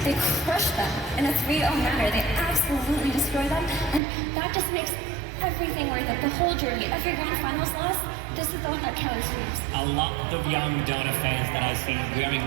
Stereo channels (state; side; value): drops out; left; at 4.0 s